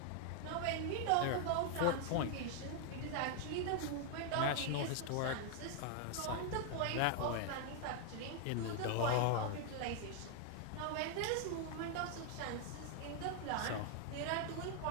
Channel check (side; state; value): both; different; correlation 0.00